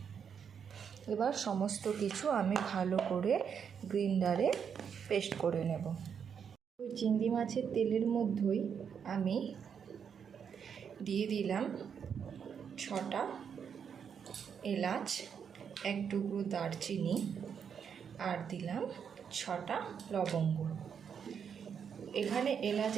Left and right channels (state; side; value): quieter; left; 7.3 dB